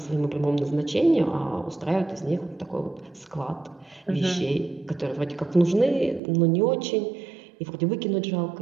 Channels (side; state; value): left; drops out; at 6.2 s